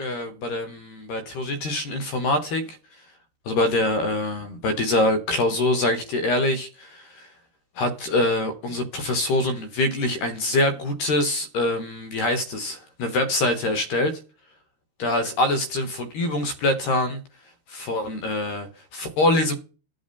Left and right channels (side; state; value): right; late; 13 ms